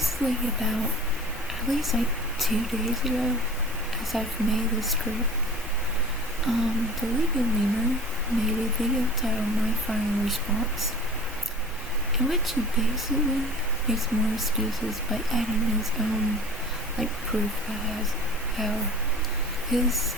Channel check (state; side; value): normal; both; correlation 0.41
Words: about at least 2 days ago, as I've made this script, the Leaping Lemur made a video titled My Final Response, in which he basically makes more excuses by adding his own, proof as how his